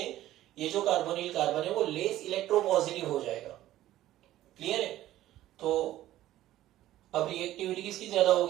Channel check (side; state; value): left; quieter; 14.2 dB